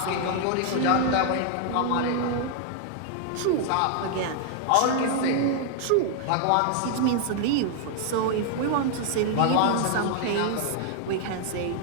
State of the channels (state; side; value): different; both; correlation 0.00